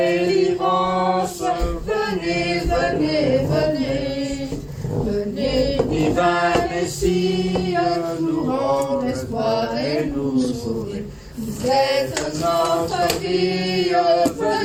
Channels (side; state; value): both; identical; correlation 1.00